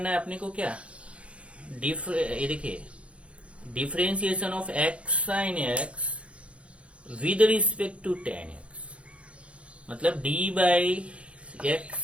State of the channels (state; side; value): late; left; 0.061 ms